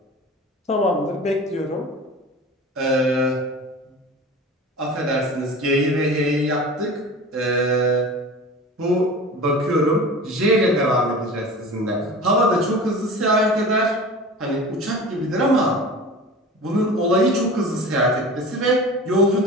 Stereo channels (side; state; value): both; normal; correlation 0.36